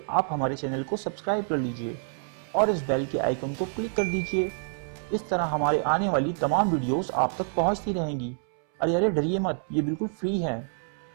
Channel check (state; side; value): silent; left; 60 dB below the other